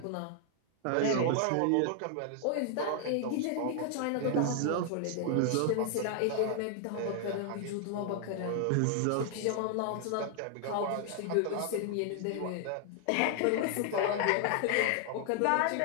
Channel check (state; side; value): different; both; correlation 0.00